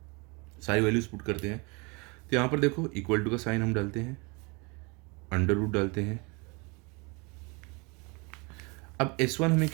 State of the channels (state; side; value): quieter; left; 29.2 dB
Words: सारी वैल्यूज पुट करते हैं। तो यहाँ पर देखो इक्वल टू का साइन हम डालते हैं, अंडर रूट डालते हैं। अब S1 हमें